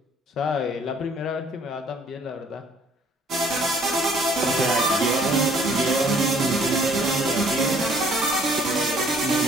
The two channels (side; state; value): both; normal; correlation 0.59